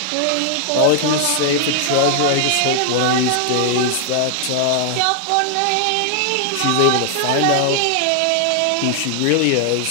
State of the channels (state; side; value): different; both; correlation 0.00